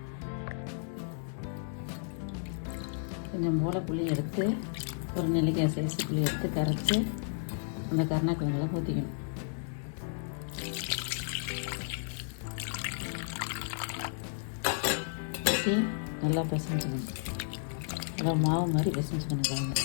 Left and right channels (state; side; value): silent; right; 56 dB below the other